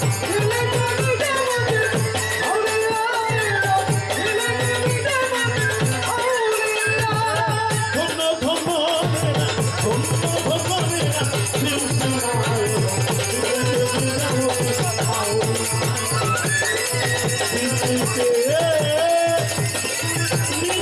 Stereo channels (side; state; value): both; identical; correlation 1.00